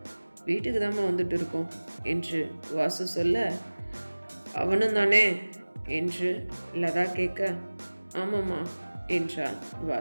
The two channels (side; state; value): both; inverted; correlation -1.00